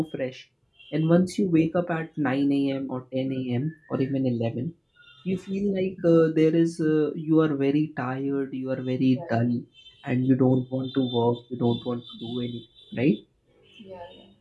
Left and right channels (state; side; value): identical; both; correlation 1.00